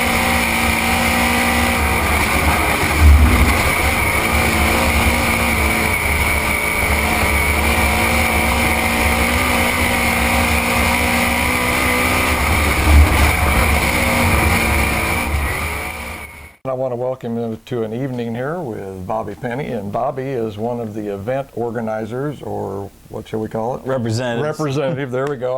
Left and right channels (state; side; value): identical; both; correlation 1.00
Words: I want to welcome you to an evening here with Bobby Penny, and Bobby is one of the event organizers, or what shall we call it? Representative, there we go,